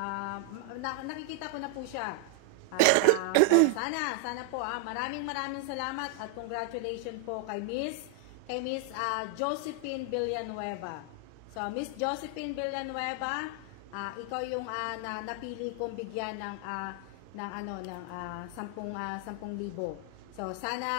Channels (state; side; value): different; both; correlation 0.00